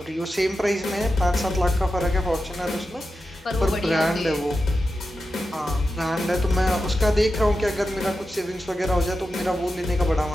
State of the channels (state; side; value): normal; both; correlation 0.90